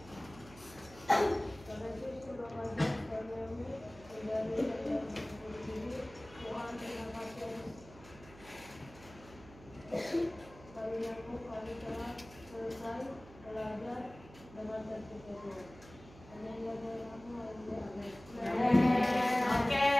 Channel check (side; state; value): right; noise; hum, 19 dB below the sound